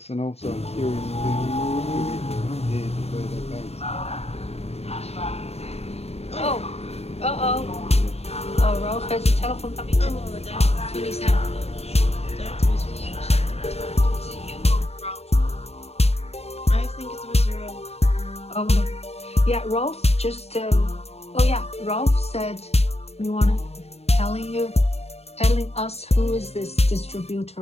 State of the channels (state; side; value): late; right; 0.30 ms